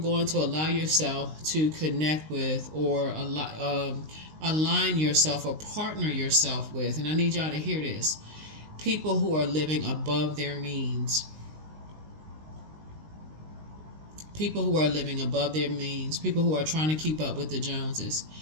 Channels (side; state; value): left; late; 19 ms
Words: to allow yourself to connect with or align yourself or partner yourself with. And I need y'all to hear this: people who are living above their means. People who are living above their means, people who are trying to keep up with the Joneses,